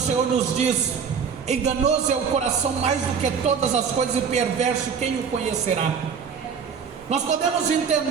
nos diz: enganoso é o coração mais do que todas as coisas, e perverso quem o conhecerá. Nós podemos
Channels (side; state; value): left; quieter; 6.5 dB